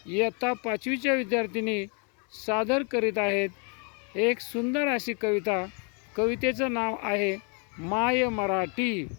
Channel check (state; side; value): quieter; right; 37.2 dB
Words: इयत्ता 5वीच्या विद्यार्थिनी सादर करीत आहेत एक सुंदर अशी कविता। कवितेचं नाव आहे माय मराठी।